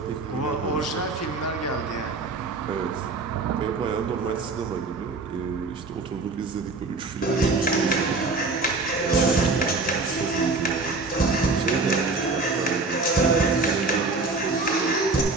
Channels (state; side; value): quieter; left; 3.7 dB